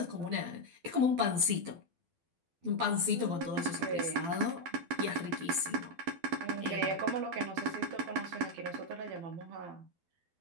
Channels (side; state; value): left; late; 12 ms